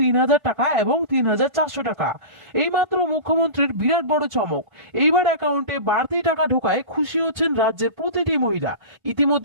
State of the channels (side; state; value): left; late; 1.5 ms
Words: টাকা এবং 3400 টাকা। এইমাত্র মুখ্যমন্ত্রীর বিরাট বড় চমক। এইবার অ্যাকাউন্টে বাড়তি টাকা ঢোকায় খুশি হচ্ছেন রাজ্যের প্রতিটি মহিলা।